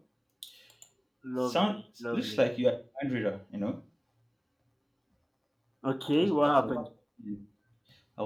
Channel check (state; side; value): identical; both; correlation 1.00